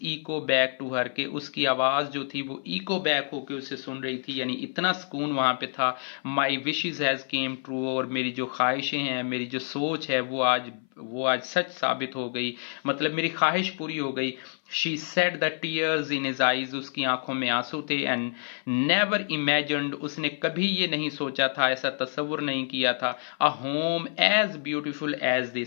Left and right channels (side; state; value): right; silent; 57 dB below the other